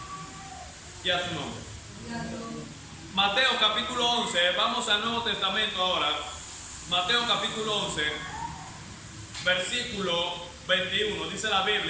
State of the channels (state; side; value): identical; both; correlation 1.00